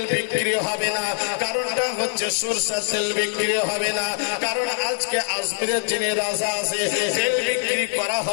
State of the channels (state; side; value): silent; right; 63 dB below the other